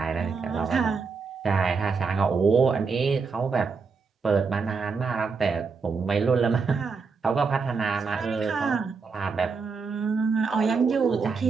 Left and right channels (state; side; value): quieter; left; 4.9 dB